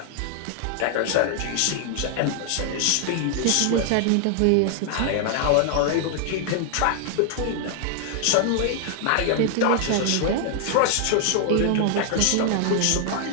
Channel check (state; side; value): different; both; correlation 0.00